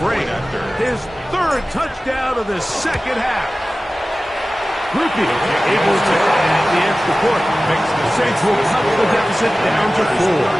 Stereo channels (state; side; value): normal; both; correlation 0.96